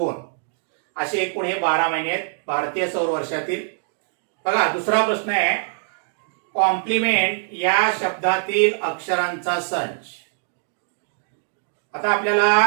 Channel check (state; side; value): silent; left; digital silence